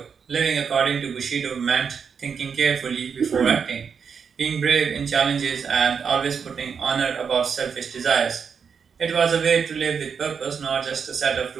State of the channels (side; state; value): left; quieter; 6.5 dB